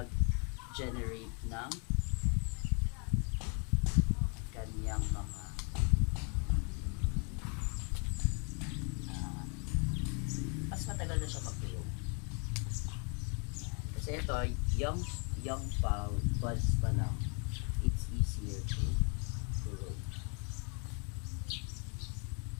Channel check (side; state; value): right; quieter; 37.5 dB